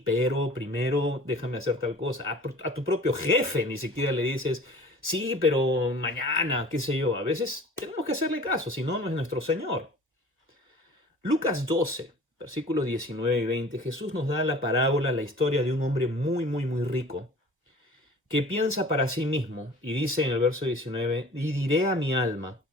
pero primero déjame hacer tal cosa. A tu propio jefe ni siquiera le dices, sí, pero mañana, qué sé yo. A veces tenemos que hacerle caso, si no, no es nuestro Señor. Lucas 12, versículos 19 y 20, Jesús nos da la parábola, la historia de un hombre muy, muy, muy rico que piensa para sí mismo y dice en el verso 19, y diré a mi alma,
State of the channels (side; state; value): both; normal; correlation 0.45